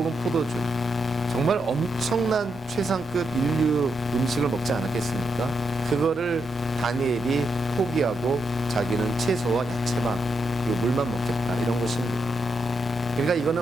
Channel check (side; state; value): both; normal; correlation 0.82